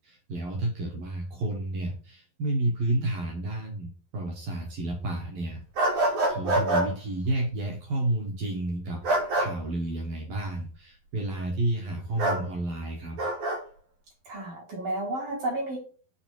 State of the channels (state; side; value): late; left; 11 ms